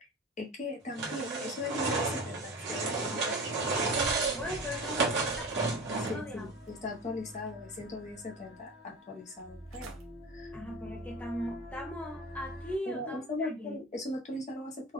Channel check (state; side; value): normal; both; correlation 0.33